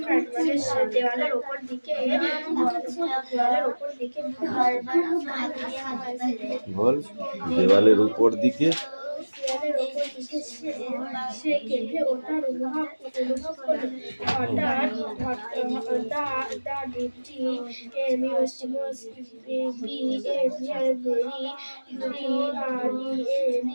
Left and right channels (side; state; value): both; inverted; correlation -1.00